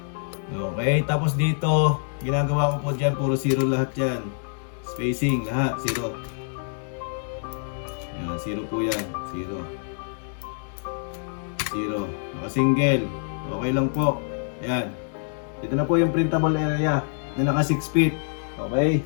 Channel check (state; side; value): silent; right; 61 dB below the other